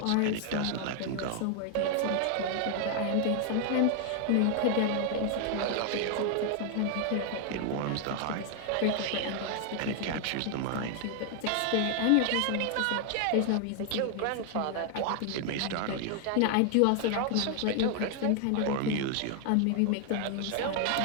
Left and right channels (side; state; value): both; different; correlation 0.00